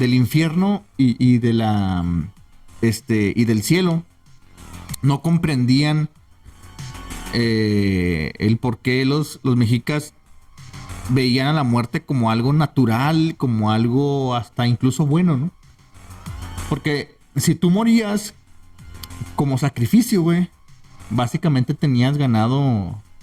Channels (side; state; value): both; identical; correlation 1.00